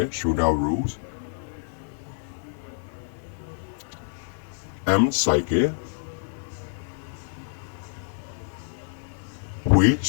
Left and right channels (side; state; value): right; silent; 59 dB below the other